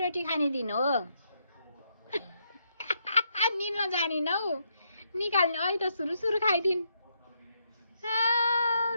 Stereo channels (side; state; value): both; inverted; correlation -0.78